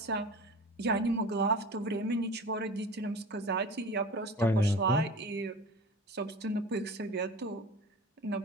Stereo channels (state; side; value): normal; both; correlation 0.37